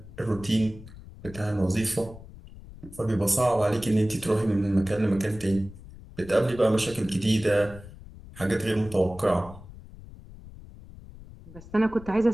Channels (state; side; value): noise; left; rumble, 17 dB below the sound